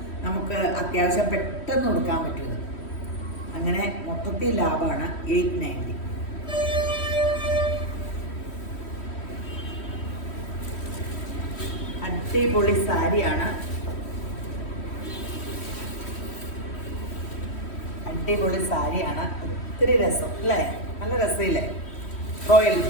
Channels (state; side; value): late; right; 3.1 ms